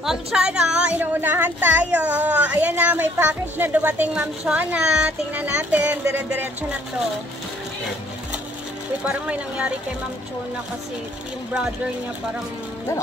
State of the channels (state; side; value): normal; both; correlation 0.62